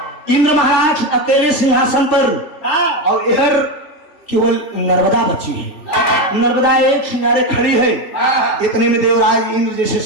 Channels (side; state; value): right; late; 3.4 ms